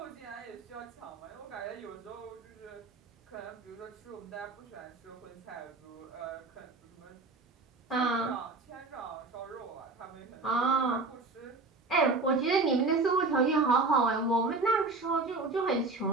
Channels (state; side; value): quieter; left; 3.6 dB